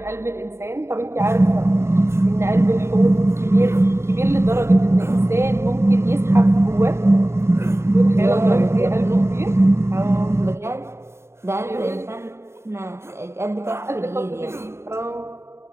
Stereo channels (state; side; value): late; left; 0.13 ms